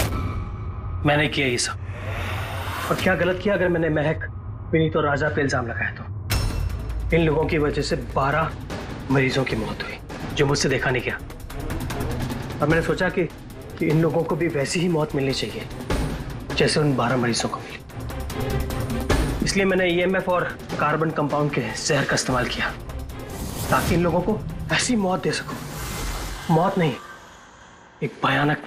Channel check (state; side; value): identical; both; correlation 1.00